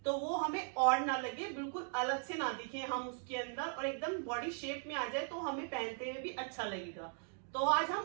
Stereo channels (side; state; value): left; silent; 52 dB below the other